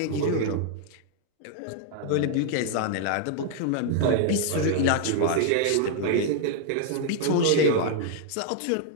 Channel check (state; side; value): different; both; correlation 0.00